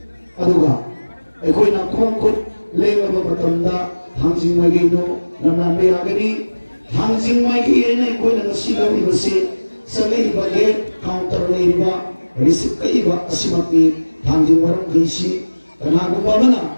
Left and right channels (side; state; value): both; inverted; correlation -1.00